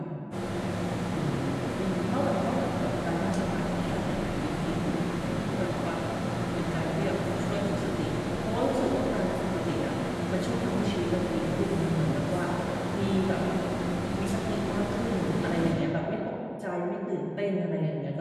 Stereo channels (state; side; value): identical; both; correlation 1.00